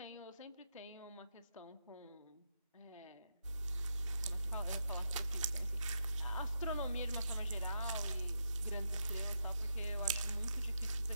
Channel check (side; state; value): both; inverted; correlation -0.83